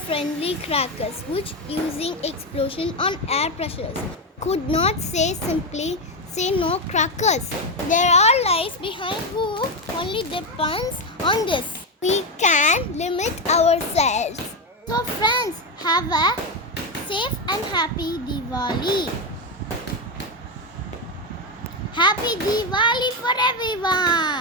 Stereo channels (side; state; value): both; normal; correlation 0.10